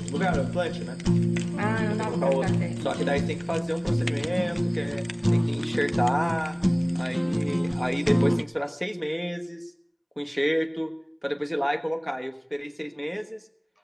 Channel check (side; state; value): both; identical; correlation 1.00